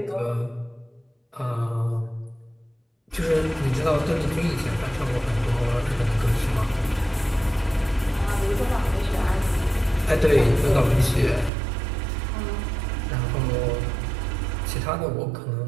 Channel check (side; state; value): left; drops out; at 11.5 s